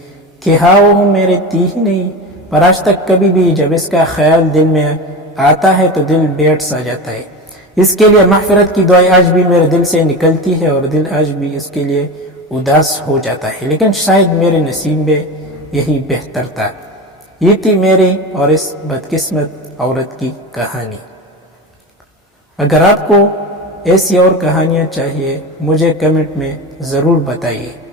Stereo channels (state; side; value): normal; both; correlation 0.26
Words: کہ ہاں وہ میرے تھی ہی نہیں، پر آج تک کبھی بھی جب اس کا خیال دل میں آتا ہے تو دل بیٹھ سا جاتا ہے۔ اس کے لیے مغفرت کی دعائیں آج بھی میرے دل سے نکلتی ہے اور دل آج بھی اس کے لیے اداس ہو جاتا ہے، لیکن شاید میرے نصیب میں یہی بہتر تھا۔ یہ تھی میری اور اس بدقسمت عورت کی کہانی۔ اگر آپ کو ایسی اور کہانیاں چاہیے مجھے کمنٹ میں ضرور بتائیے.